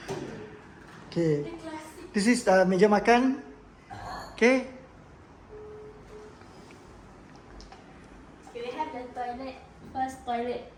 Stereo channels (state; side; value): identical; both; correlation 1.00